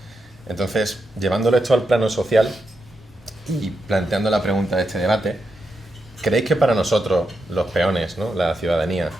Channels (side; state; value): both; normal; correlation 0.85